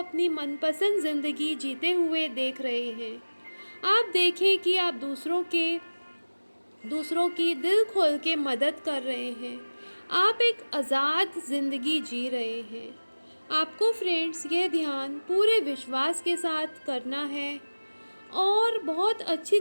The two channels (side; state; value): both; inverted; correlation -1.00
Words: मनपसंद ज़िंदगी जीते हुए देख रहे हैं। आप देखें कि आप दूसरों की दिल खोल के मदद कर रहे हैं। आप एक आज़ाद ज़िंदगी जी रहे हैं। आपको फ्रेंड्स यह ध्यान पूरे विश्वास के साथ करना है और बहुत अच्छी